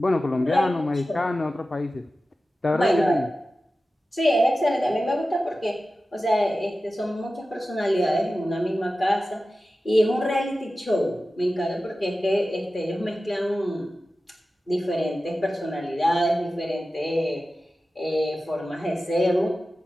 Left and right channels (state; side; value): normal; both; correlation 0.94